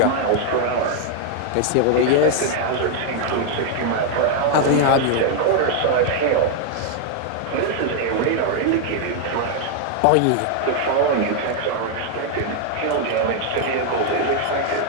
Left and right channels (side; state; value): both; different; correlation 0.00